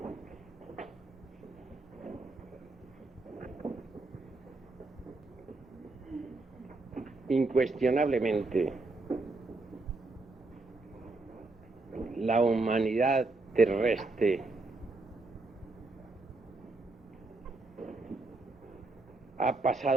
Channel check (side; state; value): left; quieter; 3.3 dB